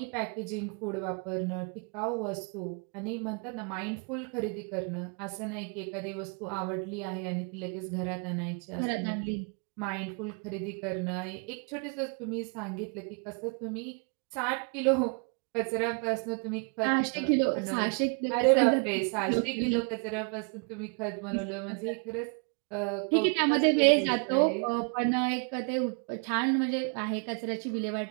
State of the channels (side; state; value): left; quieter; 37.4 dB